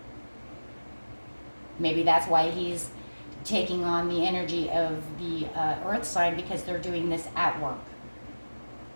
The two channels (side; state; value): both; inverted; correlation -1.00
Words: Maybe that's why he's taking on the energy of the earth sign, because they're doing this at work.